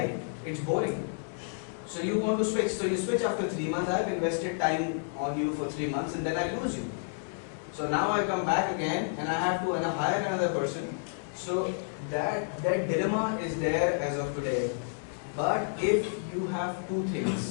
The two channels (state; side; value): silent; right; digital silence